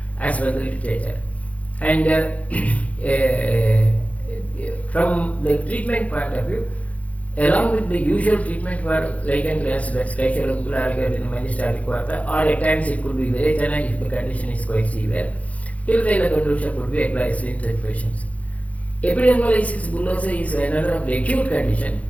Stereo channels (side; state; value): right; late; 0.067 ms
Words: as per the literature. And from the treatment point of view, along with the usual treatment for lichen planus, that's Kaishoragula Aragyavartini Manjishtarikvata, or at times it could be Virechana if the condition is quite severe, Tiluvela Gandusha could be advised in such patients. Epidermolysis bullosa is another of the acute condition,